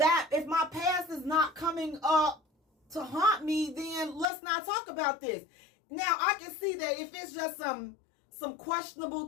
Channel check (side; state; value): right; drops out; at 4.2 s